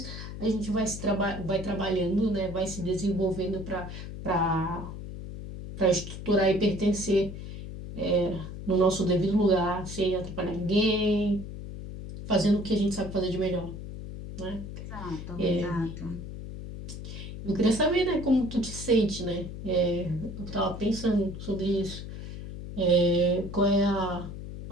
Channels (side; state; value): left; noise; hum, 9 dB below the sound